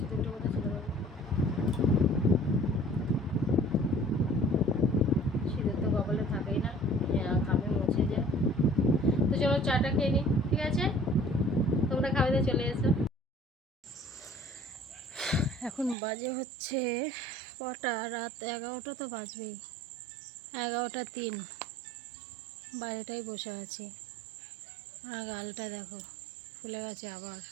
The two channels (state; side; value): drops out; left; at 16.0 s